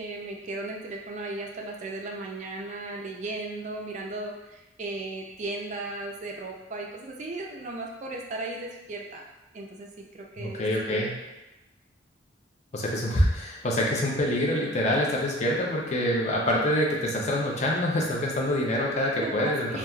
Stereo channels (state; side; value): normal; both; correlation 0.41